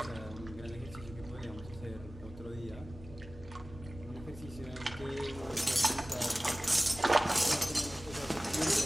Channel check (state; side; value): normal; both; correlation 0.98